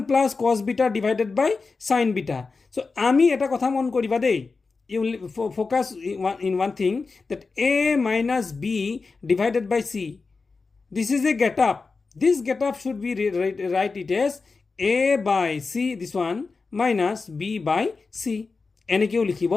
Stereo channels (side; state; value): right; quieter; 4.3 dB